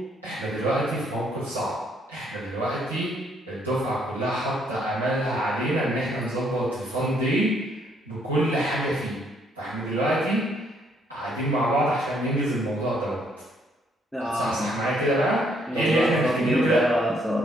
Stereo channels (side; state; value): both; normal; correlation 0.69